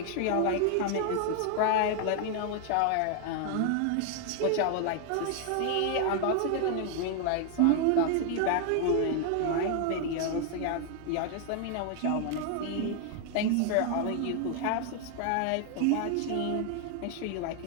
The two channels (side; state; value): both; different; correlation 0.00